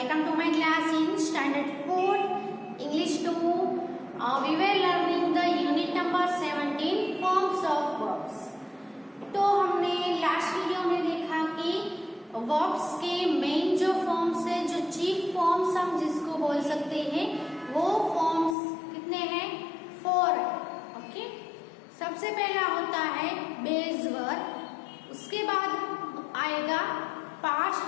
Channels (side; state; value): right; drops out; at 18.6 s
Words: to my class in standard 4 English 2. We were learning the unit number 17 forms of verbs. तो हमने last video में देखा कि verbs के main जो फॉर्म्स है, जो चीफ फॉर्म्स हम जिसको बोल सकते हैं, वो फॉर्म्स कितने हैं? 4 है. ओके, सबसे पहला होता है बेस वर्ब, उसके बाद आएगा past